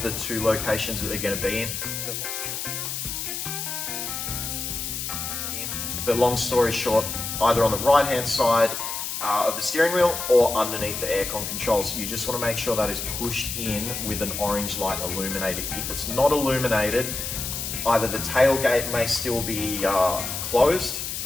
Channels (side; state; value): left; noise; hiss, 4 dB below the sound